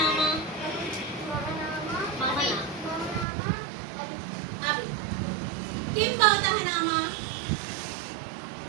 మమ నామ. అభి. కిం భవతః నామ?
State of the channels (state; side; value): drops out; left; at 3.2 s